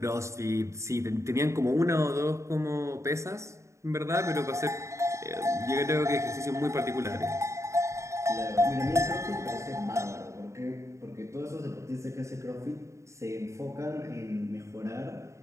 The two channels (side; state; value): left; late; 0.14 ms